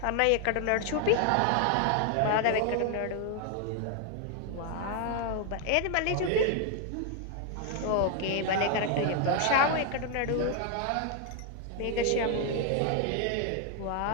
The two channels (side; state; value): both; different; correlation 0.00